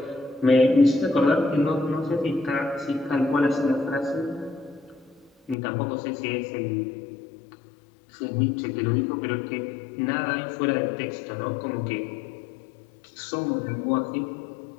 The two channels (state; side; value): drops out; right; at 5.6 s